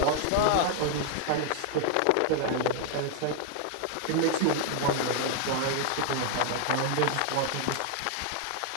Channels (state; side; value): different; both; correlation 0.00